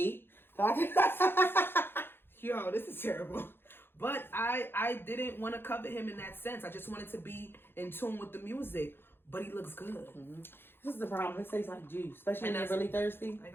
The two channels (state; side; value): late; right; 0.10 ms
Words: Yo, this is terrible. But I didn't want to covet him in that sense. I just wanted to be in tune with the music. But he looks good. This is the problem. It tastes like juice. Especially when they're really thirsty. Like